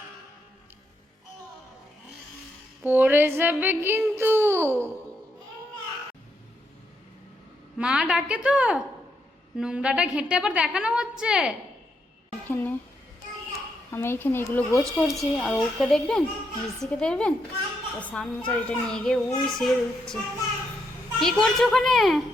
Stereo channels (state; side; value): normal; both; correlation 0.79